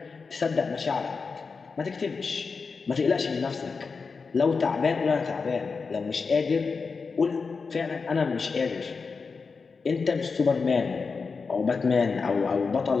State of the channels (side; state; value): right; quieter; 4.8 dB